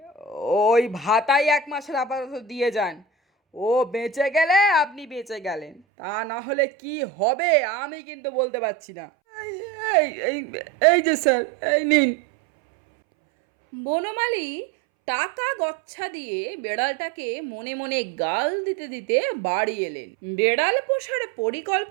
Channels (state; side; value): drops out; left; at 5.8 s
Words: ওই ভাতাই 1 মাসের আপাতত দিয়ে যান। ও বেঁচে গেলে আপনি বেঁচে গেলেন, তা না হলে কি হবে আমি কিন্তু বলতে পারছি না। এই যে স্যার, এই নিন। বনমালী টাকা গচ্ছা দিয়ে বেড়ালটাকে মনে মনে গাল দিতে দিতে বাড়ি এলেন। বেড়াল পোষার